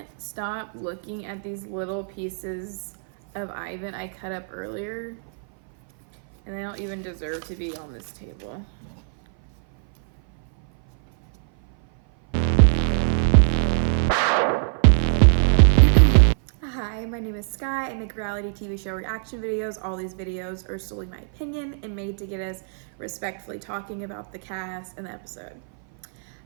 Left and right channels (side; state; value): left; silent; 58 dB below the other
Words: stop looking at these little pieces of Ivan I cut up earlier, and they don't even deserve to be on this table. Hi, my name is Sky. I make reality TV show reaction videos. All these videos are solely my opinion and made to get us respectfully talking about the cast and the episode.